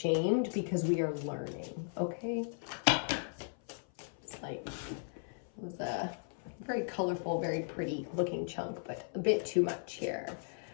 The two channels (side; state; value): right; silent; 53 dB below the other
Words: because we are learning. Okay. It's like, it was a very colorful, very pretty looking chunk, but a bit too much here.